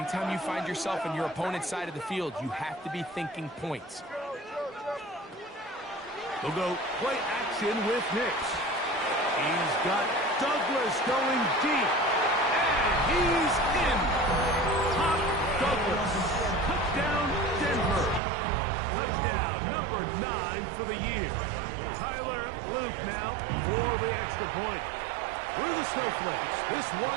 you find yourself on your opponent's side of the field, you have to be thinking points. They'll go play action with Nix. He's got Douglas going deep. And he's in. Top Douglas. Touchdown, Denver. Touchdown, number 9 for the year. Tyler Luke now for the extra point. Through the snowflakes. This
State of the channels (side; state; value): left; drops out; at 18.2 s